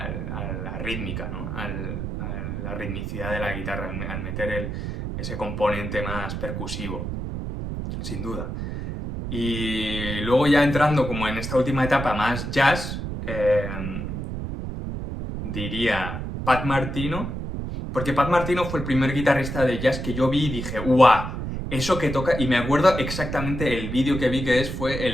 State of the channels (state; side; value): noise; right; rumble, 5 dB below the sound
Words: rítmica, ¿no? A la ritmicidad de la guitarra, al meter ese componente más percusivo, sin duda. Y luego ya entrando como en esta última etapa más jazz, diría Pat Martino, porque Pat Martino fue el primer guitarrista de jazz que yo vi y dije, ¡guau! Eso que toca, y me acuerdo exactamente el vídeo que vi fue